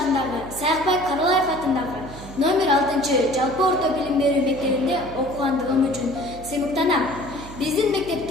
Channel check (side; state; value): right; noise; hum, 16 dB below the sound